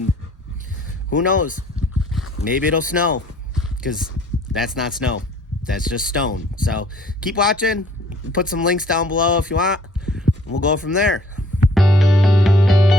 who knows, maybe it'll snow, because that's not snow, that's just stone. So keep watching, put some links down below if you want, and we'll go from there.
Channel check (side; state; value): both; normal; correlation 0.58